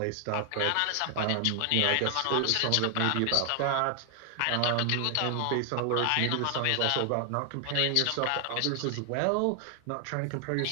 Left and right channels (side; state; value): both; different; correlation 0.00